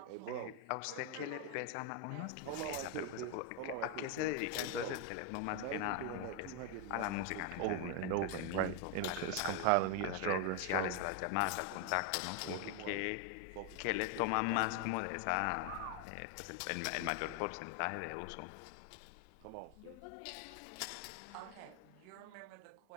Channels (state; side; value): different; both; correlation 0.01